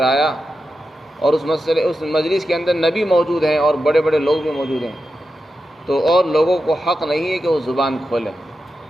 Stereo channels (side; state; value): both; normal; correlation 0.90